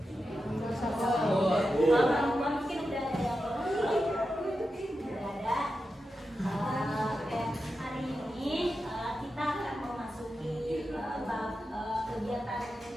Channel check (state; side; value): normal; both; correlation 0.90